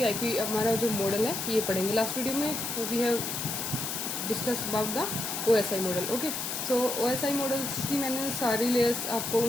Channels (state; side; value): noise; left; hiss, 3 dB below the sound